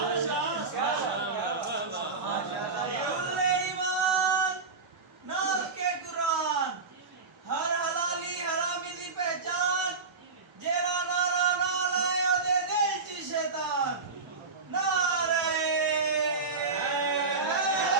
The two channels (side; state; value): left; quieter; 4.3 dB